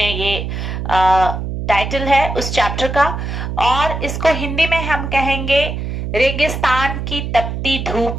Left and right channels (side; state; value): right; noise; hum, 4 dB below the sound